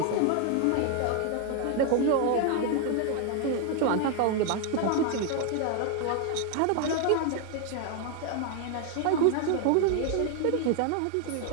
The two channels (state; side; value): different; both; correlation 0.00